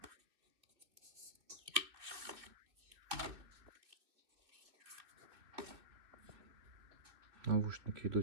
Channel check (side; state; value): left; late; 2.8 ms